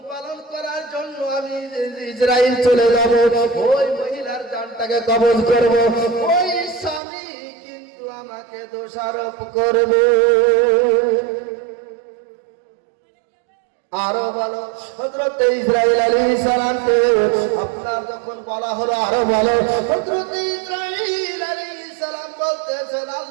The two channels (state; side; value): drops out; left; at 7.0 s